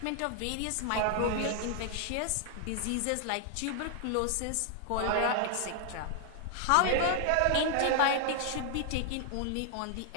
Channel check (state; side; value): different; both; correlation 0.00